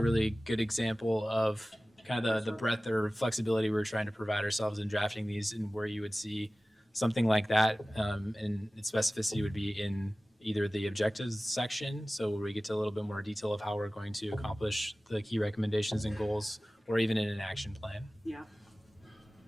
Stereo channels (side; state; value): both; normal; correlation 0.97